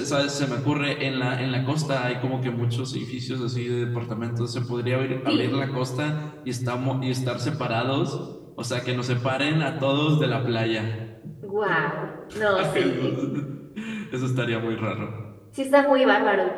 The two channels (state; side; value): identical; both; correlation 1.00